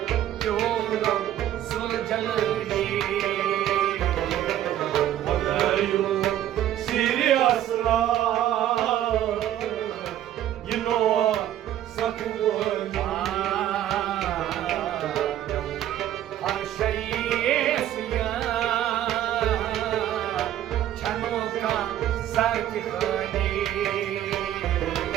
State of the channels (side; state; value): left; quieter; 12.0 dB